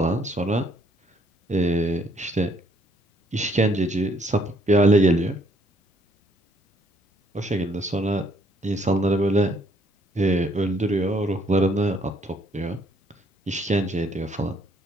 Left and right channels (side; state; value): both; normal; correlation 0.66